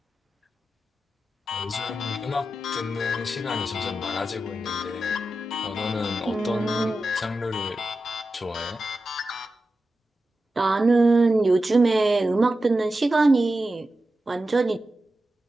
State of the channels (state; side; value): normal; both; correlation 0.92